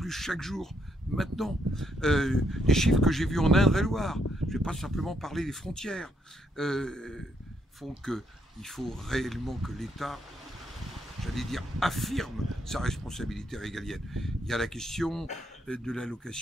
chaque jour, maintenant. Les chiffres que j'ai vus en Indre-et-Loire, je ne vais pas simplement parler des frontières, font qu'il faut réellement que l'État, j'allais dire, affirme sa responsabilité régalienne. Il y a la question de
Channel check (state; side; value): normal; both; correlation 0.74